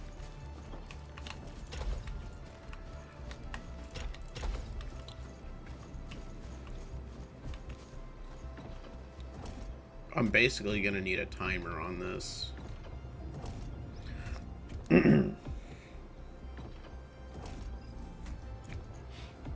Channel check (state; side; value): identical; both; correlation 1.00